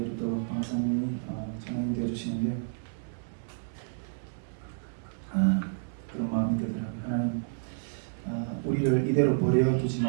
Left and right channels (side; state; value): left; silent; digital silence